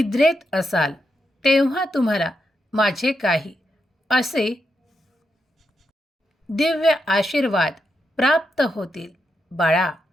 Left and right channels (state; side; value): normal; both; correlation 0.84